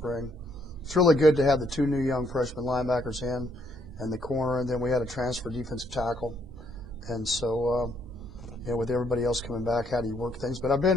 it's really good to have the 2 new young freshman linebackers in and the corner, and then we had a transfer defensive tackle. And so with everybody else coming back, how do you work things? But I've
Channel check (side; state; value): both; normal; correlation 0.70